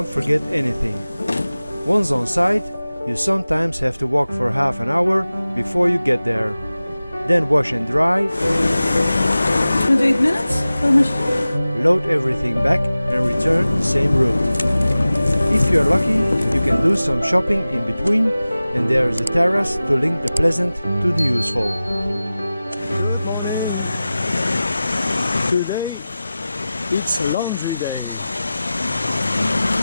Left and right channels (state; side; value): inverted; both; correlation -0.96